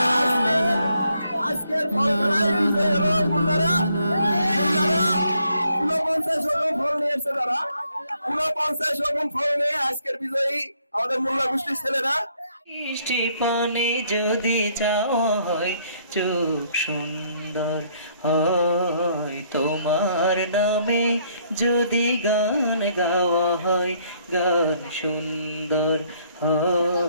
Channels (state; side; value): inverted; both; correlation -0.69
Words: আজকের ফলখানায় বিজয়ী হলো মুন্নারা। 49 রকম ফল নিয়ে এসেছে তারা, 49 রকম ফল নিয়ে আজকের বিজয়ী আমাদের মোল্লা গোষ্ঠীর ছেলেরা। মিষ্টি পানে যদি যাওয়া হয় চোখ সুন্দর হয়, তোমার নামে যদি গান গাওয়া হয়, গান সুন্দর